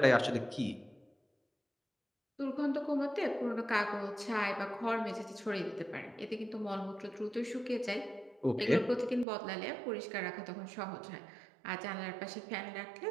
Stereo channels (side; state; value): left; drops out; at 9.2 s